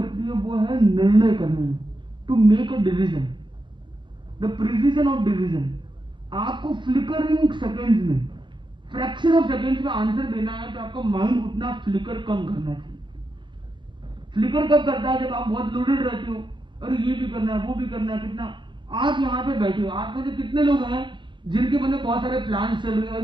है वो है निर्णय करने में, to make a decision, the precision of decision. आपको फ्लिकरिंग सेकेंड्स में, फ्रैक्शन ऑफ सेकेंड्स में आंसर देना है, तो आपका माइंड उतना फ्लिकर कम करना चाहिए। फ्लिकर कब करता है, जब आप बहुत लोडेड रहते हो, अरे ये भी करना है, वो भी करना है, कितना। आप यहाँ पे बैठे हो, आप में से कितने लोग हैं जिनके मन में बहुत सारे प्लान चल रहे हैं,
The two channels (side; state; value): left; late; 0.23 ms